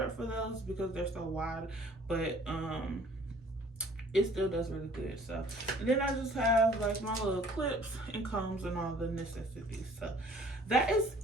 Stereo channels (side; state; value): both; normal; correlation 0.54